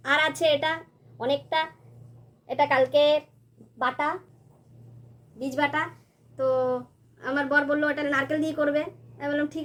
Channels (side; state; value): both; identical; correlation 1.00